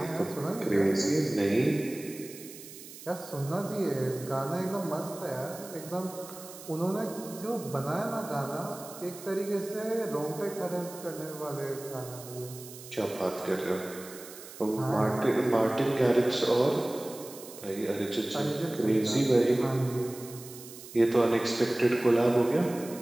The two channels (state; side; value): noise; right; hiss, 15 dB below the sound